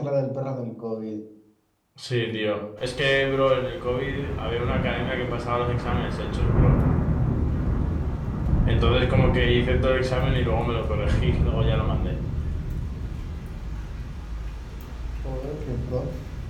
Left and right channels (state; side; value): identical; both; correlation 1.00